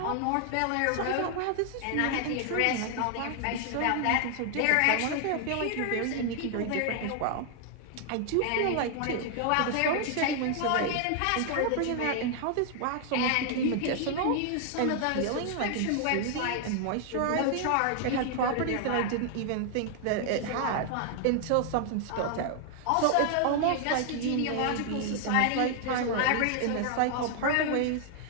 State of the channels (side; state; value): both; different; correlation 0.00